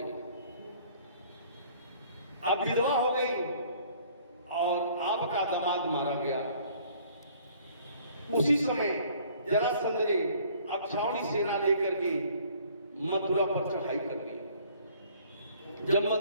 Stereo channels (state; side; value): inverted; both; correlation -0.56